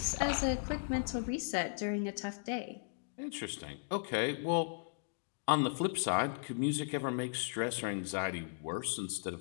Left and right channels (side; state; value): right; silent; digital silence